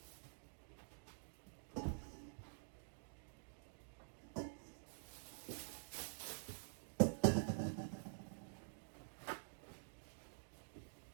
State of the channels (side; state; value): left; silent; digital silence